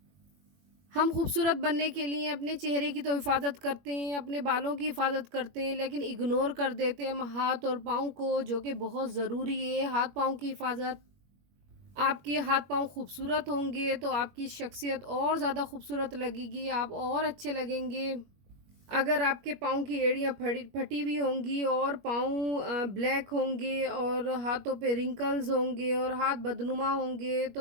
हम खूबसूरत बनने के लिए अपने चेहरे की तो हिफाजत करते हैं, अपने बालों की हिफाजत करते हैं, लेकिन इग्नोर कर देते हैं हम हाथ और पाँव को, जो कि बहुत ज़रूरी है। हाथ पाँव की हिफाजत, आपके हाथ पाँव खूबसूरत होंगे तो आपकी शख्सियत और ज़्यादा खूबसूरत लगेगी, आप और अच्छे लगेंगे। अगर आपके पाँव की एड़ियाँ फटी फटी हुई होंगी और पाँव ब्लैक होंगे और हाथों पे रिंकल्स होंगे और हाथ बदनुमा होंगे,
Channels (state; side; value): late; left; 21 ms